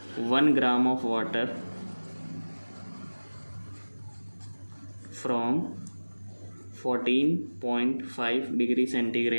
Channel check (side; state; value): both; inverted; correlation -1.00